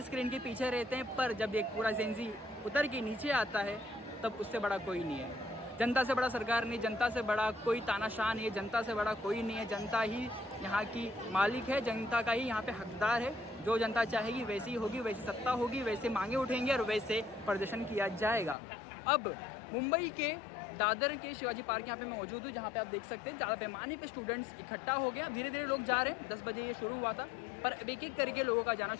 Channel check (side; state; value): right; drops out; at 18.6 s